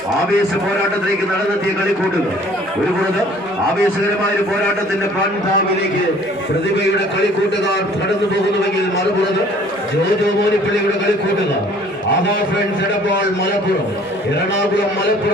ആവേശ പോരാട്ടത്തിലേക്ക് നടന്നെത്തിയ കളിക്കൂട്ടുകൾ. ഒരു പുറത്ത് ആവേശകരമായ ഒരു പോരാട്ടത്തിന്റെ പാൻതാവിലേക്ക് പ്രതിഭയുടെ കളിക്കൂട്ടുകാർ കടന്നു പോകുന്നുവെങ്കിൽ മറുപുറത്ത് ജോജോ മോനിപ്പള്ളിയുടെ കളിക്കൂട്ടുകാർ ആഹാ ഫ്രണ്ട്സ് എടപ്പാൾ മലപ്പുറം എറണാകുളം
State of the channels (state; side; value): normal; both; correlation 0.54